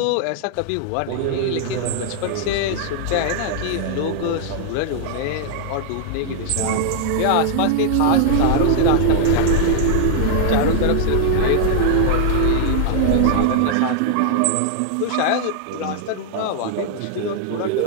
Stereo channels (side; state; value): both; different; correlation -0.01